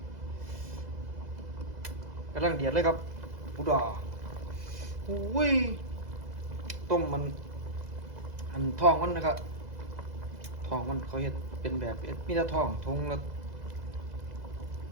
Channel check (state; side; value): late; left; 2.0 ms